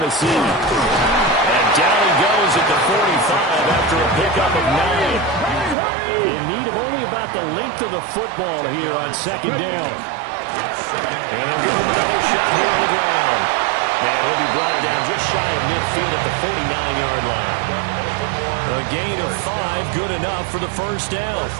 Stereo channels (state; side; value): drops out; left; at 5.8 s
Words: And down he goes at the 45 after a pickup of 9. In need of only about the length of the football here on 2nd down. And they'll give him another shot here on the ground. And he'll be brought down just shy of midfield at the 49-yard line. A gain of 5, good enough for the 1st down.